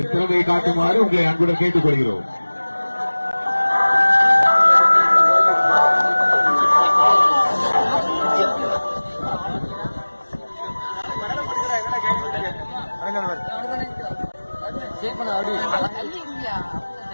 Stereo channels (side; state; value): both; inverted; correlation -1.00